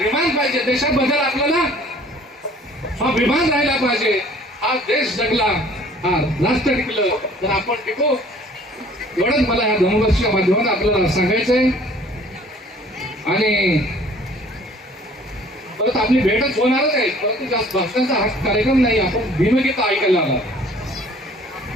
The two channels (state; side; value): normal; both; correlation 0.53